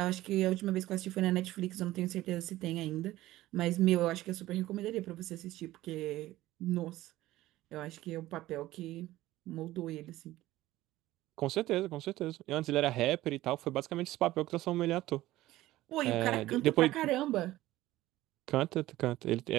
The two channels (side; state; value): left; quieter; 16.2 dB